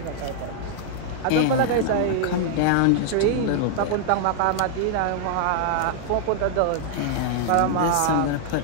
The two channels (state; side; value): different; both; correlation -0.01